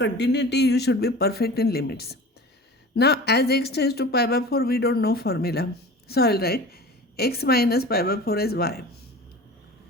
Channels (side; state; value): both; normal; correlation 0.38